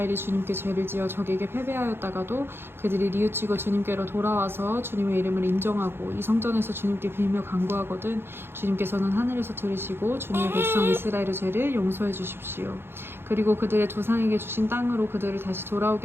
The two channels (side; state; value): left; late; 0.11 ms